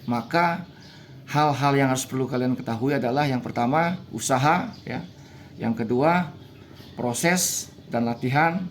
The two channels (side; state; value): both; identical; correlation 1.00